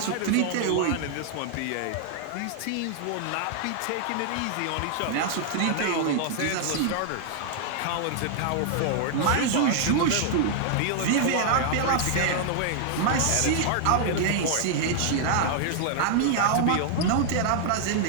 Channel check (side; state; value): both; different; correlation 0.00